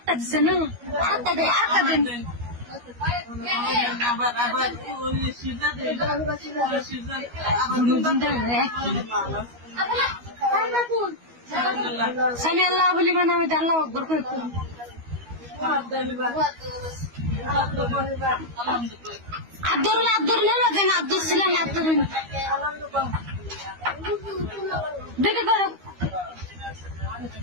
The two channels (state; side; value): late; left; 13 ms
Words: দিছে না আটটা দে আটটা দেন সামি আল্লাহ বলি মানে আমি আল্লাহ আকবর করে আব্দুল আব্দুল নেলা দেন আব্দুল ছিলেন আব্দুল দেখে করো